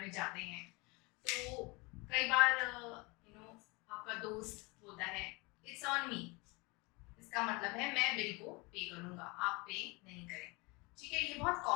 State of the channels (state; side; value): quieter; right; 26.7 dB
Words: में जाते हैं तो कई बार आपका दोस्त बोलता है इट्स ऑन मी। इसका मतलब है मैं बिल को पे करूंगा, आप पे नहीं करें। ठीक है, ये बहुत